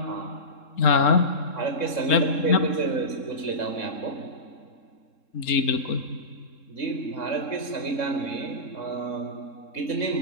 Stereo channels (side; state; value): right; late; 3.7 ms